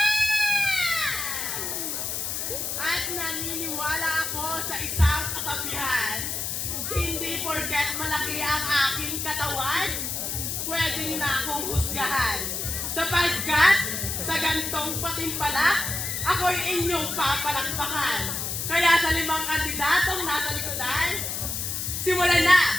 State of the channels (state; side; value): noise; left; hiss, 3 dB below the sound